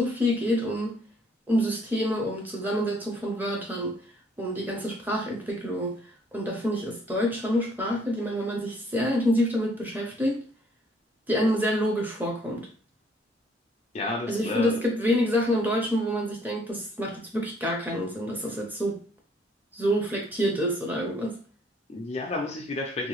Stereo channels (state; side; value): normal; both; correlation 0.62